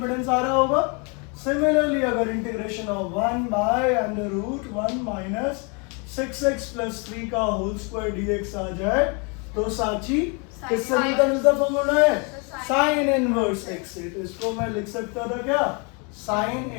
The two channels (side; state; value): right; quieter; 33.6 dB